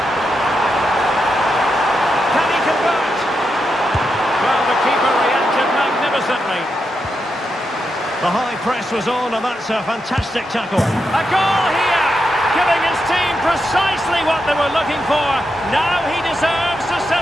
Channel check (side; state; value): both; normal; correlation 0.85